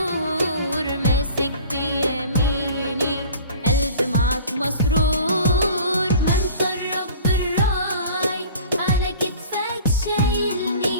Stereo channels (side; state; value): both; inverted; correlation -0.44